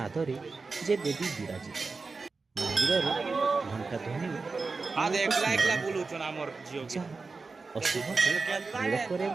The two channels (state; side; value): quieter; left; 4.2 dB